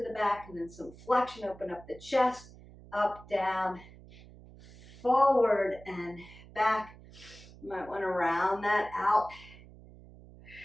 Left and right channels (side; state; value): right; noise; hum, 20 dB below the sound